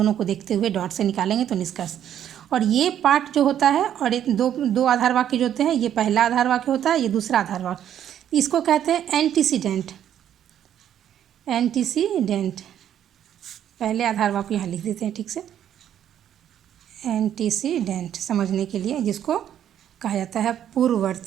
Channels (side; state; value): left; quieter; 10.3 dB